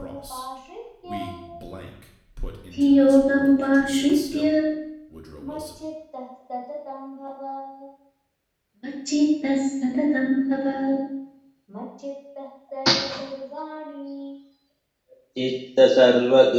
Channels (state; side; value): identical; both; correlation 1.00